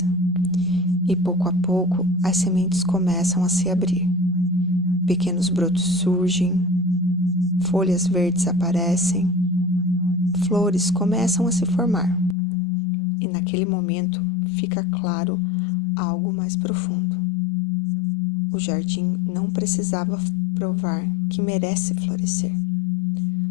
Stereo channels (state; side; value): drops out; right; at 12.4 s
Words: E pouco a pouco, as sementes começam a se abrir. Pequenos brotos surgem, folhas verdes aparecem, flores começam a se formar. E naquele momento fica claro algo mais profundo. O jardim não precisava provar que merece florescer.